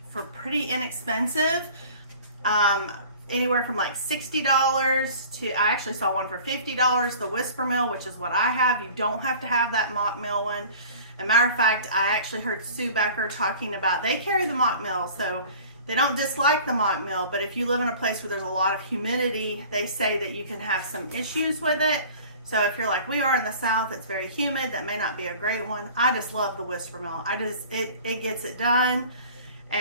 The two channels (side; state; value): both; inverted; correlation -0.44